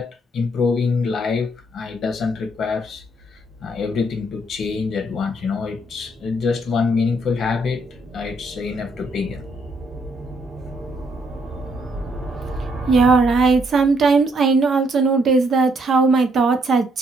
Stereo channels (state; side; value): normal; both; correlation 0.71